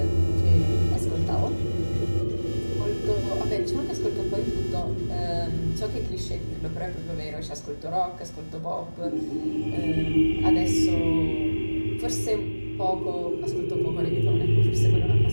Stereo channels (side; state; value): both; inverted; correlation -1.00